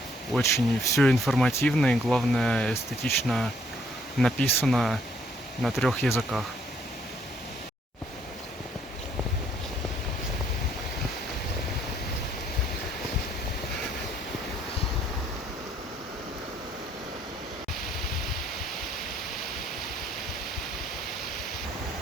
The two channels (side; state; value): both; normal; correlation 0.67